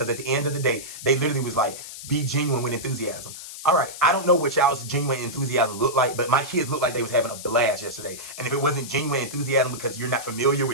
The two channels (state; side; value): noise; left; hiss, 12 dB below the sound